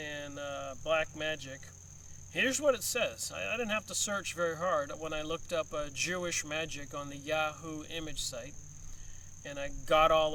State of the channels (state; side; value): identical; both; correlation 1.00